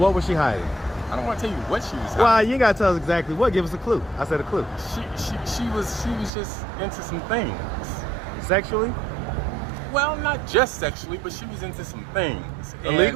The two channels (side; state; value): left; drops out; at 6.3 s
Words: was she hiding? I don't want to tell you what she was hiding. Well, you ain't got to tell us exactly what. Give us a clue. I said a clue. She was just into some things. Sexually? Well, not just sexually, but she was into some things.